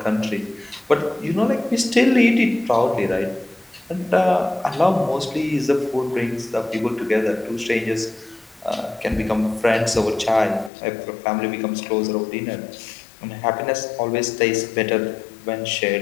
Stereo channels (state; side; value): drops out; right; at 10.7 s